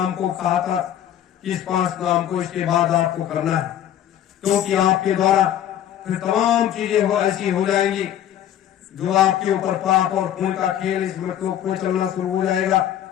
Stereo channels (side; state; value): right; quieter; 11.0 dB